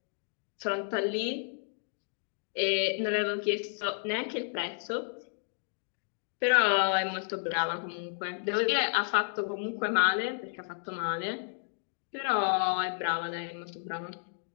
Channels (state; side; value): silent; right; digital silence